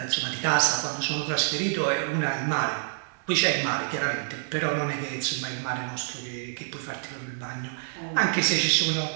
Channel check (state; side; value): silent; left; digital silence